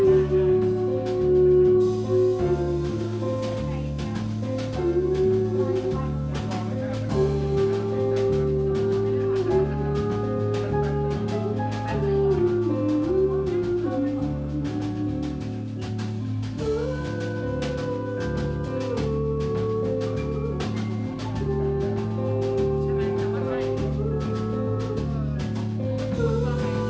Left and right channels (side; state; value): both; identical; correlation 1.00